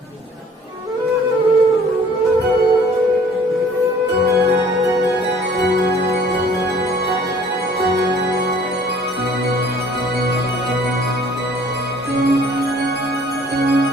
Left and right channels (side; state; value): both; normal; correlation 0.55